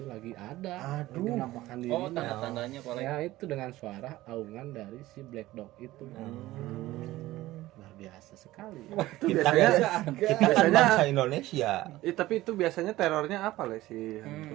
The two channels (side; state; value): left; quieter; 16.9 dB